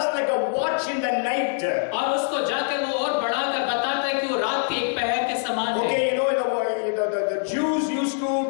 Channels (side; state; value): right; silent; digital silence